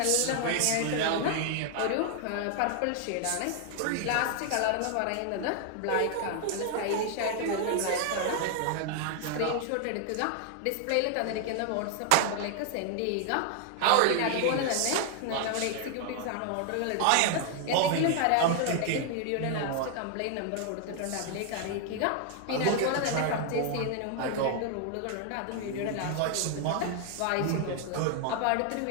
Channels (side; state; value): both; different; correlation 0.00